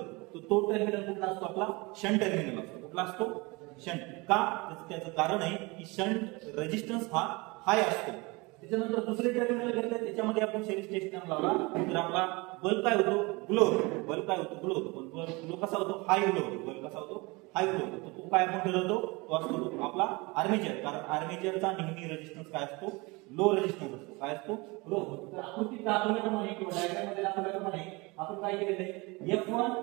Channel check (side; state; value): left; quieter; 25.5 dB